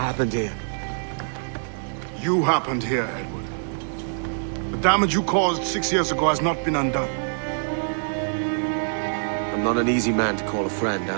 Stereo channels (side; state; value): left; silent; digital silence